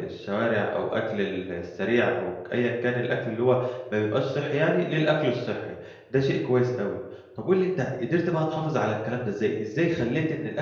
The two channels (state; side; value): identical; both; correlation 1.00